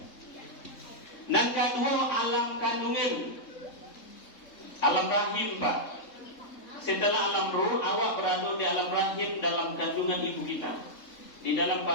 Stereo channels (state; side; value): late; right; 3.7 ms